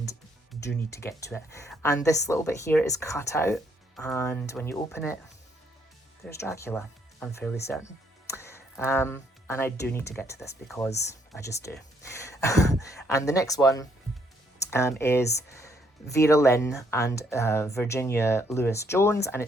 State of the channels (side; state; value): both; normal; correlation 0.70